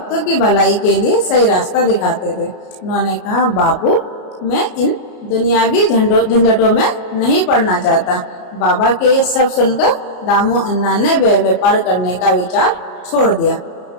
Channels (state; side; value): late; right; 33 ms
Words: की भलाई के लिए सही रास्ता दिखाते थे। उन्होंने कहा, बापू, मैं इन दुनियावी झंझटों में नहीं पड़ना चाहता। बाबा के ये सब सुनकर दामू अन्ना ने व्यापार करने का विचार छोड़ दिया।